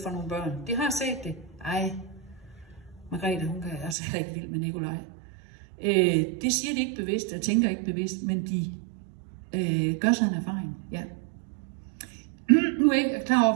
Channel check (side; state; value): left; drops out; at 4.0 s